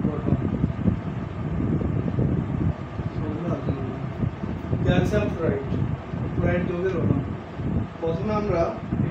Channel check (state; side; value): identical; both; correlation 1.00